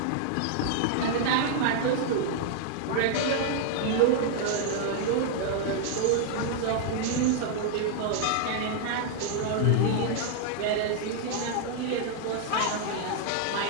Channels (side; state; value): both; different; correlation -0.01